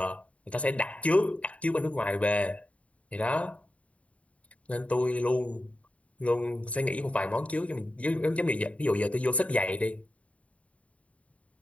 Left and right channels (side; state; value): right; late; 0.066 ms